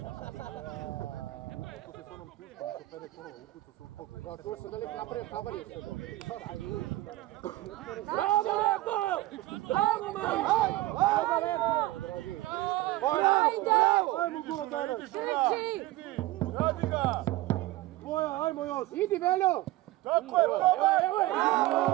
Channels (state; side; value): quieter; left; 17.5 dB